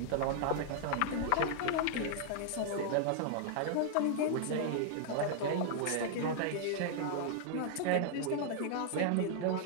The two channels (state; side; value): different; both; correlation -0.01